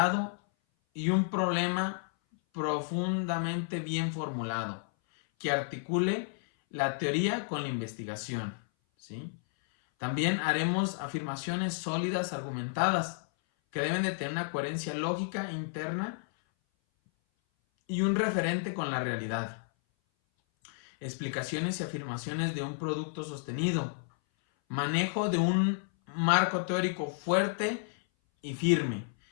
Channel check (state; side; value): silent; right; 57 dB below the other